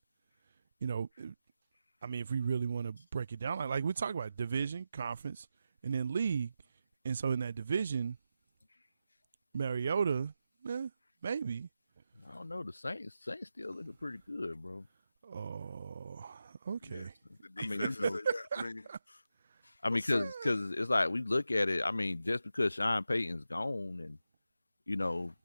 You know, I mean, if we really want to break it down, like we talk about division, conference, and then league, and so in that division, Mariota, maybe. I don't know. The Saints still looking pretty good, bro. Oh, okay. The defense I mean, because it's like we look at it. I mean, just because Sean Payton's gone, and you know,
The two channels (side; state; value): both; inverted; correlation -0.90